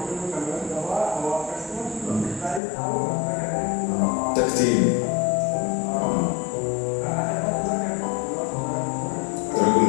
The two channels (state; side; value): drops out; right; at 2.6 s